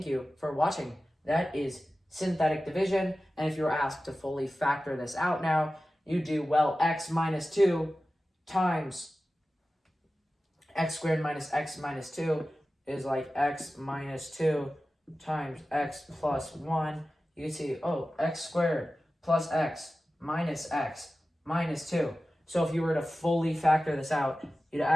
you for watching. That is synthetic division. And if you were asked to fully factor this out now, you do, well, x minus 2 times x squared minus x minus 2 is like x minus 2 times x plus 1. You can see, oh, x squared plus x minus 2. So if you were to fully factor this out, you'd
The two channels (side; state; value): both; normal; correlation 0.95